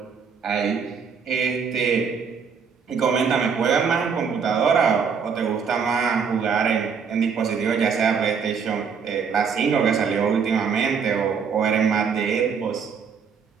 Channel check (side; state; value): left; quieter; 6.2 dB